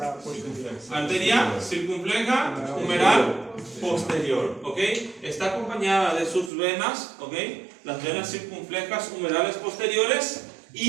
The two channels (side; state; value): left; drops out; at 6.5 s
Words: Arteria circunfleja humeral posterior. ¿Ok? Está acompañada de sus venas. ¿Ok? Las venas circunflejas humerales posteriores.